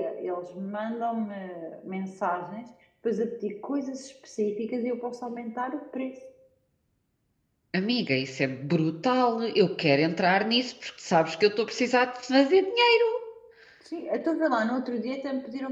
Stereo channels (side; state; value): both; identical; correlation 1.00